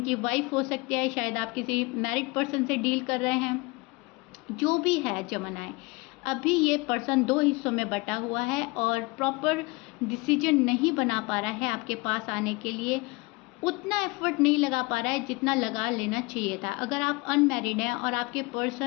वाइफ हो सकती है, शायद आप किसी मैरिड पर्सन से डील कर रहे हैं। जो भी है जमनाएं, अभी ये पर्सन दो हिस्सों में बटा हुआ है और प्रॉपर डिसीजन नहीं बना पा रहा है आपके पास आने के लिए, उतना एफर्ट नहीं लगा पा रहा है जितना लगा लेना चाहिए था। अगर आप अनमैरिड हैं और आपके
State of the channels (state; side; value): quieter; right; 24.9 dB